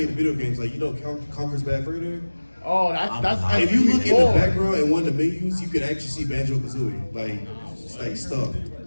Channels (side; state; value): both; inverted; correlation -1.00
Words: the video games, like Conker's Bad Further. Oh, that's If you look in the N64. background and one of the menus, you can actually see Banjo Kazooie, like